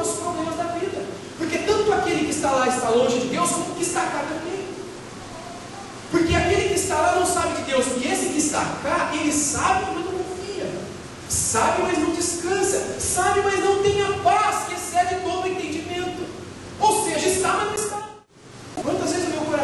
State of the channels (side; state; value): both; identical; correlation 1.00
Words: os problemas da vida. Porque tanto aquele que está lá está longe de Deus, como o que está cá também. Porque aquele que está lá não sabe de Deus, e esse que está cá, ele sabe, mas não confia. Sabe, mas não descansa. Sabe, mas não tem a paz que excede todo o entendimento. Ou seja, está, mas não está. Quantas vezes o meu